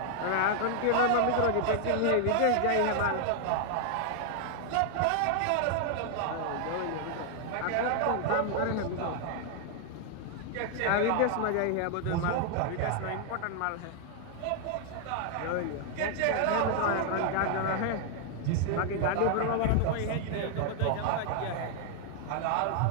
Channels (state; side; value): different; both; correlation 0.00